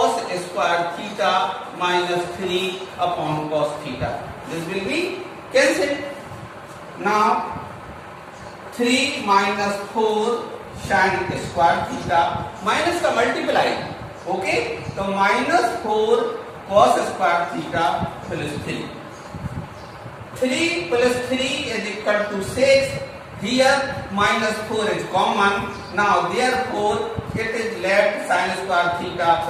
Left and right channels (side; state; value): both; identical; correlation 1.00